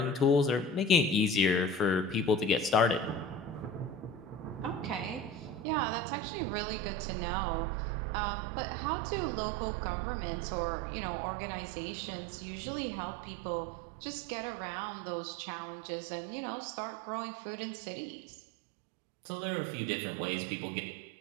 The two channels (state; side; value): drops out; left; at 5.7 s